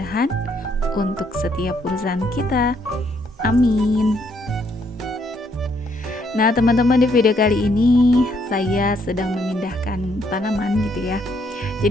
untuk setiap urusan kita. Amin. Nah teman-teman, di video kali ini saya sedang memindahkan tanaman gitu ya.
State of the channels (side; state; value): both; normal; correlation 0.71